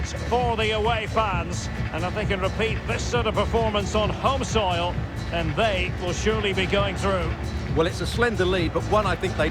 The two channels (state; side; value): identical; both; correlation 1.00